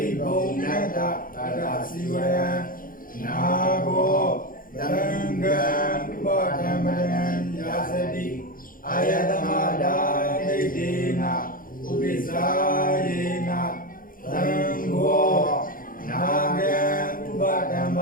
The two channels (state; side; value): late; right; 0.40 ms